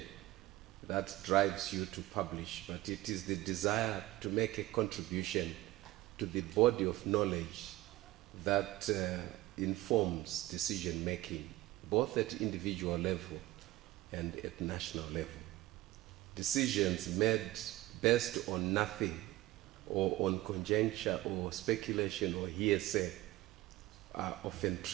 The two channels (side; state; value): left; quieter; 17.5 dB